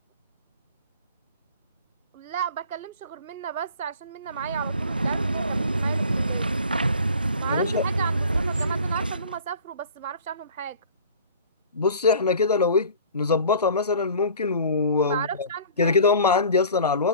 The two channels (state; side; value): inverted; both; correlation -0.45